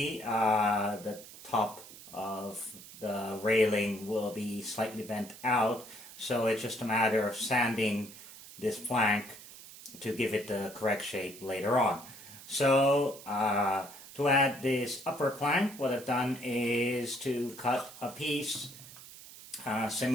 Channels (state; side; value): noise; right; hiss, 17 dB below the sound